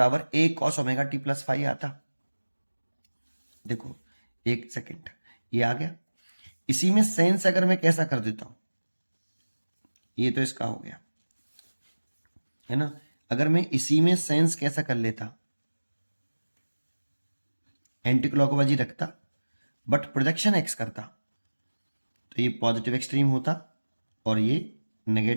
ए कॉस ओमेगा टी प्लस 5 आता. देखो एक सेकेंड, ये आ गया. इसी में सेंस अगर मैं कैसा कर देता हूं, ये तो इसका हो गया है ना, अगर मैं इसी में सेंस कैसा कर लेता, एंटी क्लॉकवाइज ही रखता बट प्रोजेक्शन एक्स करता, तो ये पॉजिटिव एक्सट्रीम होता और ये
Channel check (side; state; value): both; inverted; correlation -1.00